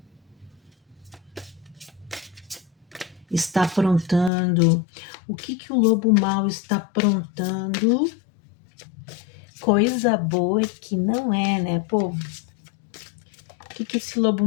está aprontando? O que o lobo mau está aprontando? Coisa boa é que não é, né, povo? O que esse lobo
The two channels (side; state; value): right; drops out; at 4.3 s